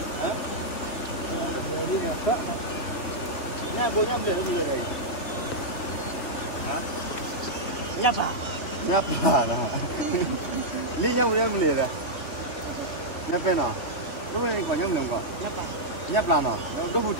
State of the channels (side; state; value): right; late; 3.3 ms